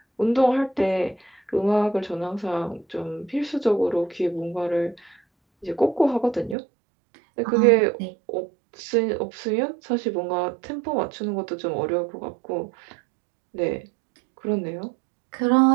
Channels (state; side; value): drops out; left; at 6.6 s